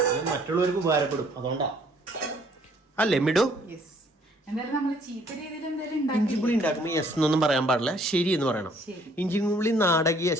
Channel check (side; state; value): both; normal; correlation 0.61